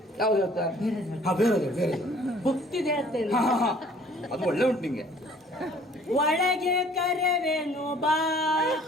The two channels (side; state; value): both; normal; correlation 0.55